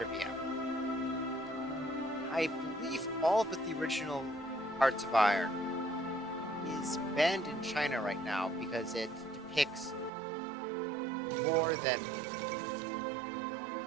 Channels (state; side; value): drops out; left; at 10.1 s